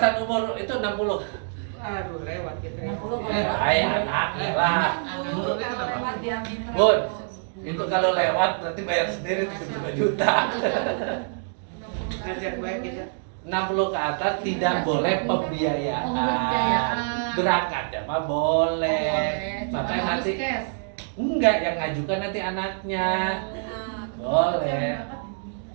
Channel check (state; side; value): silent; left; digital silence